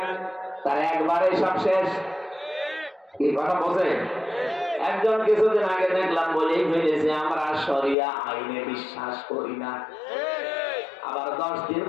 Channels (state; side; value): drops out; right; at 8.0 s